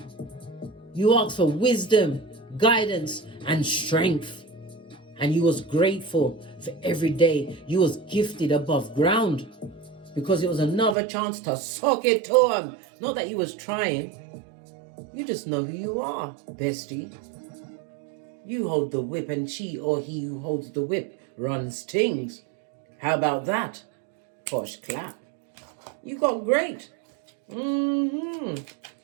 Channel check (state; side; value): drops out; left; at 11.0 s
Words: you asked for wisdom, guidance, and strength. And you was grateful for every day you was gifted above ground because it was another chance to sock it to him. Not that you was trying. You just know who you are, bestie. You hold the whip and she or he who holds the whip runs things. How about that? Posh clap. You got great.